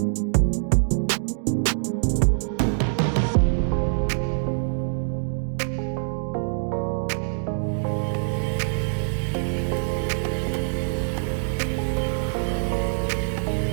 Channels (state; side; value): silent; left; digital silence